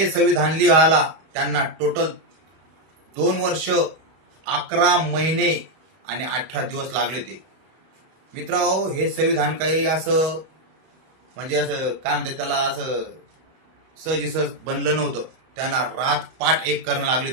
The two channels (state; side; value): late; left; 31 ms